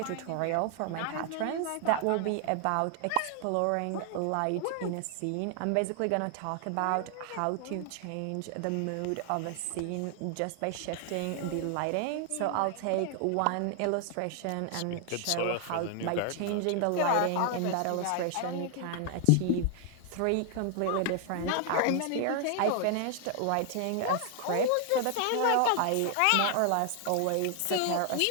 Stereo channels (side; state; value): both; different; correlation 0.00